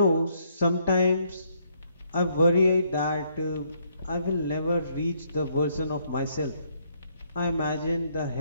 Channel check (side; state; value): both; inverted; correlation -0.70